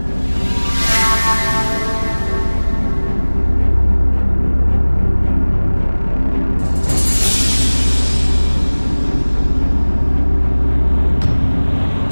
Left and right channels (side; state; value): both; inverted; correlation -1.00